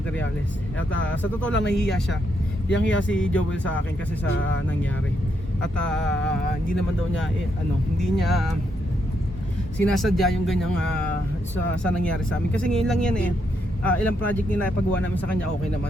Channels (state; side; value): normal; both; correlation 0.78